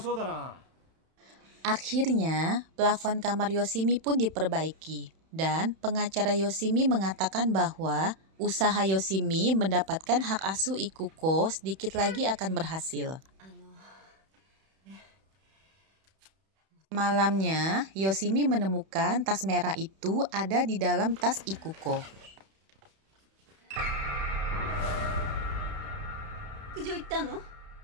Akhirnya, plafon kamar Yoshimi pun diperbaiki, dan pengacara Yoshimi mengatakan bahwa usaha Yoshimi mendapatkan hak asuh Ikuko sedikit lagi akan berhasil. Malamnya, Yoshimi menemukan tas merah itu ada di dalam tas Ikuko.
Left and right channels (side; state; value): left; late; 31 ms